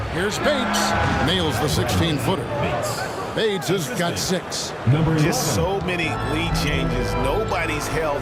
Here's Bates. Nails the 16-footer. Bates has got 6. Just so many lead changes. Nobody's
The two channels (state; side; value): identical; both; correlation 1.00